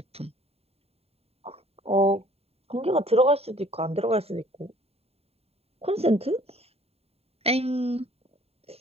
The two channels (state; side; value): late; left; 0.29 ms